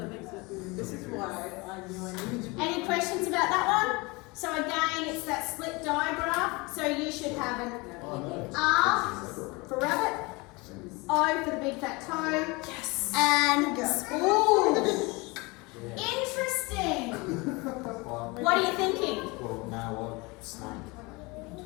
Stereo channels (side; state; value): right; quieter; 25.7 dB